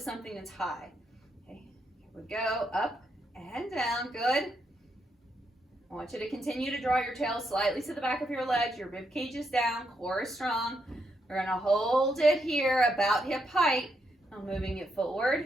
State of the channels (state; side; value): normal; both; correlation 0.79